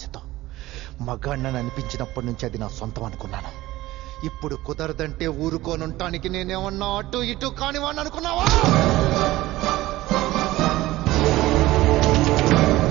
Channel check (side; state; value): left; quieter; 17.3 dB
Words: మగాణ్ణని అనిపించినప్పటి నుంచి అది నా సొంతం అనుకున్నాను. ఇప్పుడు కుదరదంటే ఊరుకోనుంటానికి నేనేమన్నా అటు ఇటు కానివాణ్ణి అనుకున్నావా?